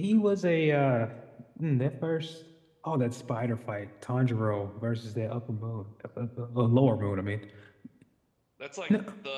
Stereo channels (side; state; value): both; identical; correlation 1.00